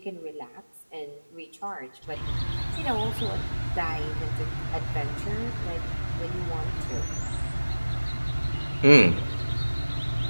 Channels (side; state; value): both; inverted; correlation -1.00